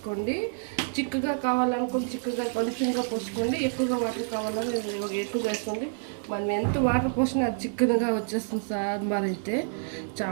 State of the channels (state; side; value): silent; left; 59 dB below the other